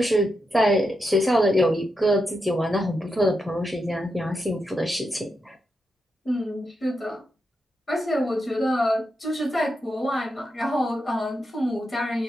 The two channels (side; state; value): both; normal; correlation 0.86